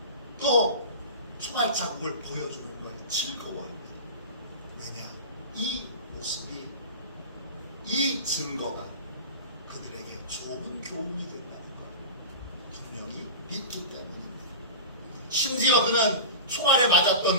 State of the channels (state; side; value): inverted; both; correlation -0.31